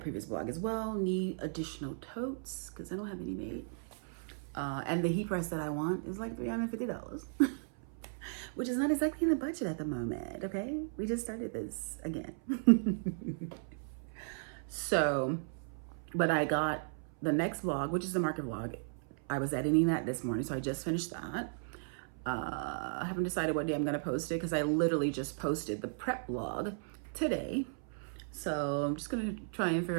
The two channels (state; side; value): silent; left; 54 dB below the other